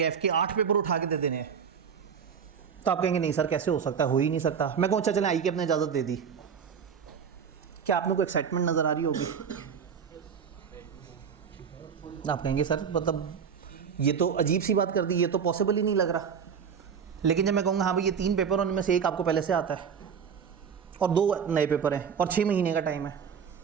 के 8 पेपर उठा के दे देने हैं, तो आप कहेंगे नहीं सर कैसे हो सकता है, हो ही नहीं सकता। मैं कहूँ अच्छा चलें आई के अपने इजाज़त दे दी, क्या आप लोग को एक्साइटमेंट नज़र आ रही होगी? आप कहेंगे सर मतलब ये तो अजीब सी बात कर दी, ये तो पॉसिबल ही नहीं लग रहा। लेकिन जब मैं कहूँगा हाँ भाई ये 3 पेपर उनमें से एक आपको पहले से आता है और 2 नए पेपर हैं और 6 महीने का टाइम है,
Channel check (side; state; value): left; quieter; 7.0 dB